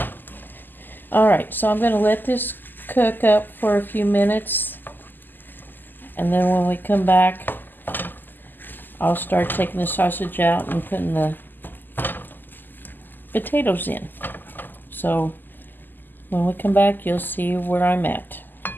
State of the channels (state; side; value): late; right; 0.090 ms